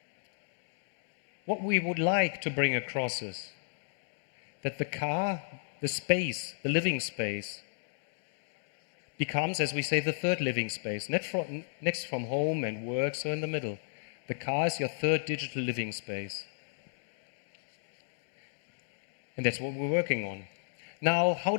what we would like to bring across is that the car, the space, the living space, becomes, as we say, the third living space. Next from home and work, so in the middle. The car is your third digital living space. And that's what we're working on. Now, how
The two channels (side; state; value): right; silent; digital silence